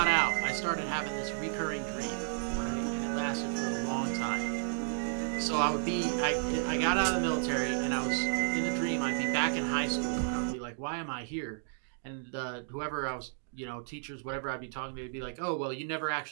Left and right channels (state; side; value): silent; left; digital silence